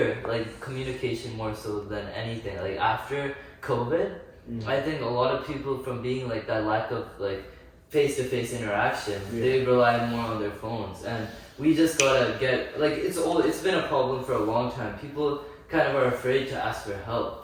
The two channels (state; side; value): identical; both; correlation 1.00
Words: like communication more so than anything. Like after COVID, I think a lot of people from being like that lack of like face-to-face interaction, Yeah. they rely more on their phones, and we just gotta get like it's been a problem for a long time. People kind of are afraid to ask for